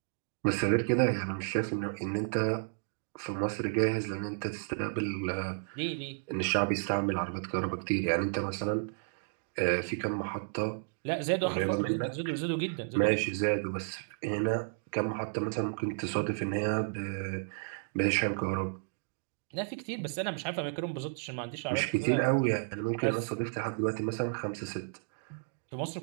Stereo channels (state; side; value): silent; left; digital silence